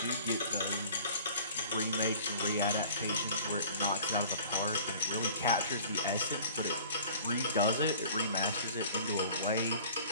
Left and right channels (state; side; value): inverted; both; correlation -0.46